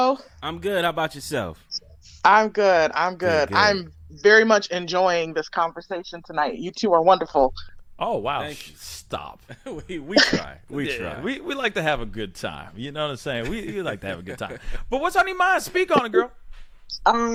I'm good. How about yourself? I'm good. Good. I'm very much enjoying this conversation tonight. You two are wonderful. Oh, wow. Thank you. Stop. we try. We Yeah, try. We like to have a good time. You know what I'm saying? We like to have a good time. But what's on your mind? Speak on it, girl.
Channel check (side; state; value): both; identical; correlation 1.00